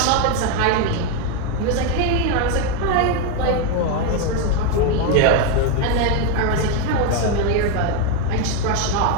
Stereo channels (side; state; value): both; different; correlation 0.02